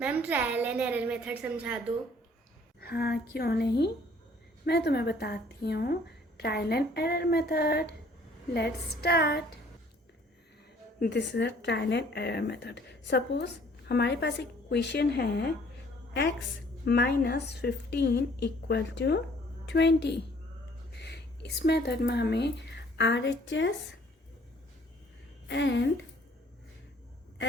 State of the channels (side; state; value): both; normal; correlation 0.58